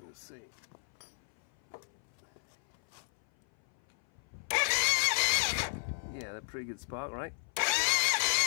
Let's see. Yeah, they're pretty good spark, right?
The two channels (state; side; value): silent; right; 55 dB below the other